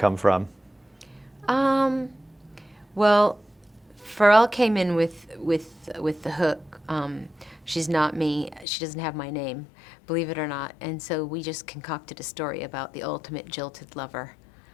from? Well, Pharrell came in with the hook. She's not me. She doesn't have my name, believe it or not. And so we just concocted a story about the ultimate jilted lover.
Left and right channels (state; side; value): drops out; right; at 8.7 s